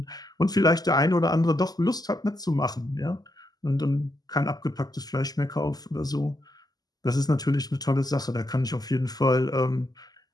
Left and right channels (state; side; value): late; right; 0.19 ms